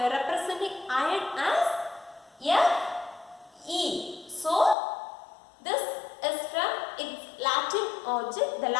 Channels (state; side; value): drops out; right; at 4.8 s